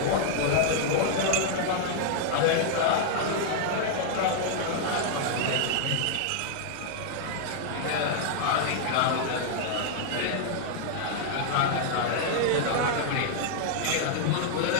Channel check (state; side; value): different; both; correlation -0.01